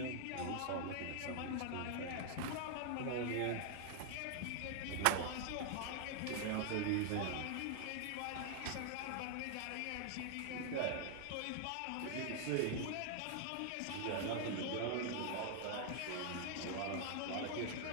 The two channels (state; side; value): different; both; correlation 0.00